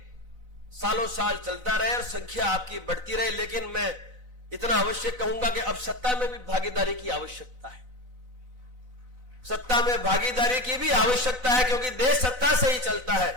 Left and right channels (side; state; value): left; late; 4.0 ms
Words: सालों साल चलता रहे और संख्या आपकी बढ़ती रहे। लेकिन मैं इतना अवश्य कहूंगा कि अब सत्ता में भी भागीदारी की आवश्यकता है, सत्ता में भागीदारी की भी आवश्यकता है, क्योंकि देश सत्ता से ही चलता है।